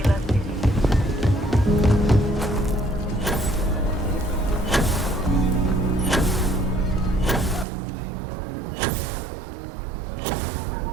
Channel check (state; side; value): drops out; left; at 7.7 s